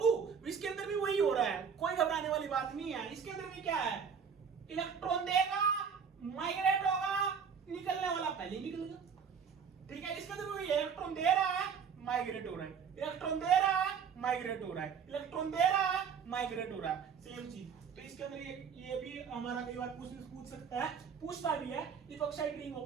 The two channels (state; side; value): quieter; left; 6.7 dB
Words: इसके अंदर भी वही हो रहा है, कोई घबराने वाली बात नहीं है। इसके अंदर भी क्या है, इलेक्ट्रॉन देगा, माइग्रेट होगा, निकलने वाला पहले निकलेगा, ठीक है। इसके अंदर भी इलेक्ट्रॉन दे रहा है, माइग्रेट हो रहा है, इलेक्ट्रॉन दे रहा है, माइग्रेट हो रहा है, इलेक्ट्रॉन दे रहा है, माइग्रेट हो रहा है, सेम चीज। तो इसके अंदर ये भी हमारा कई बार पूछ सकता है, पूछता भी है, epoxide ring